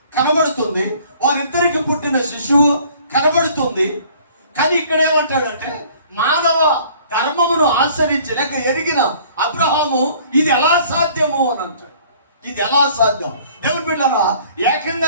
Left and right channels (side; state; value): both; inverted; correlation -0.54